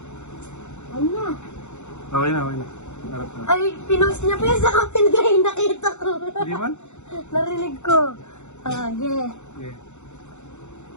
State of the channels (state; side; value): late; right; 0.83 ms